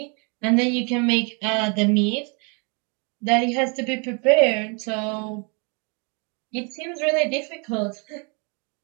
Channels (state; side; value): quieter; left; 34.2 dB